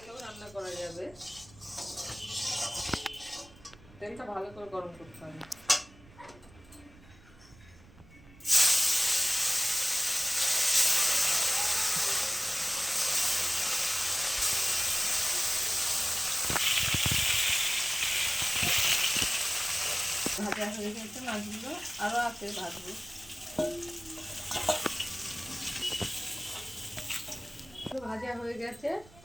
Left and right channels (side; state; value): right; noise; rumble, 23 dB below the sound